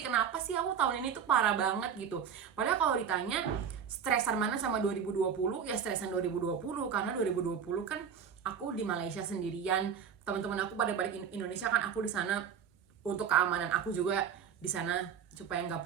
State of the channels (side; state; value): left; quieter; 7.6 dB